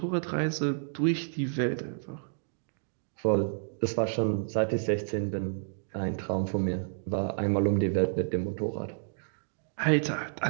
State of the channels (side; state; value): left; silent; digital silence